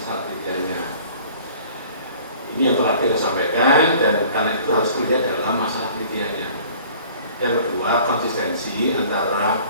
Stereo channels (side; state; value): both; inverted; correlation -0.50